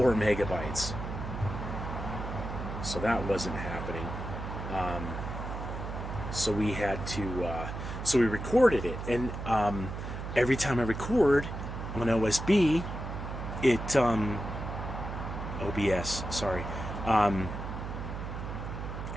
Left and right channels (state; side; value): noise; right; hum, 6 dB below the sound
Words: megabytes, so that wasn't happening. So we had to we recorded it, and every time I record on OSB, it OBS, sorry,